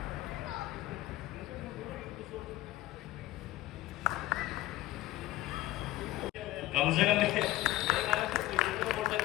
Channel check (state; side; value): quieter; right; 16.5 dB